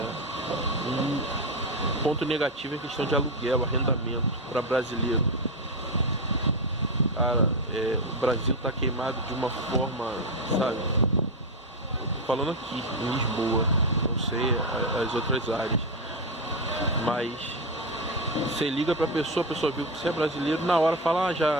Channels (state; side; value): normal; both; correlation 0.10